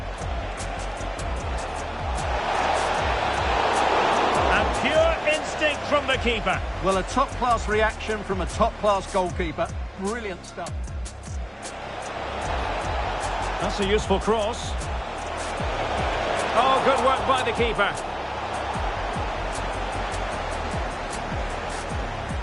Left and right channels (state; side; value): identical; both; correlation 1.00